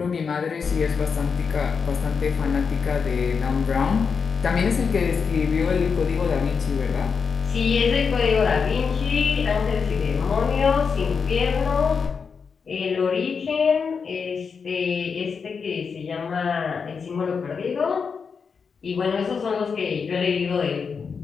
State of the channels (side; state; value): right; quieter; 5.7 dB